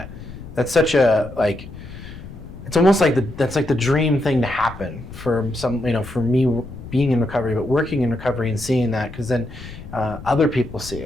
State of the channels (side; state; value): left; noise; rumble, 14 dB below the sound